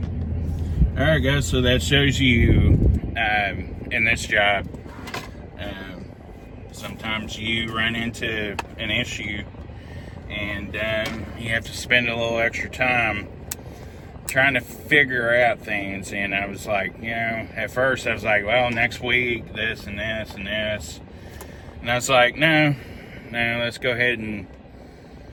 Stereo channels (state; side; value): identical; both; correlation 1.00